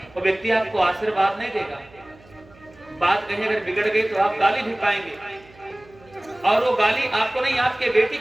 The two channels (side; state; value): right; noise; hum, 26 dB below the sound